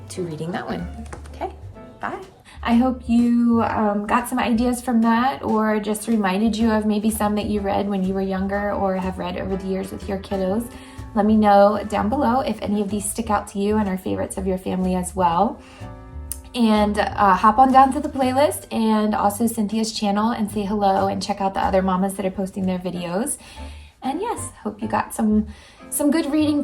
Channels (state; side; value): identical; both; correlation 1.00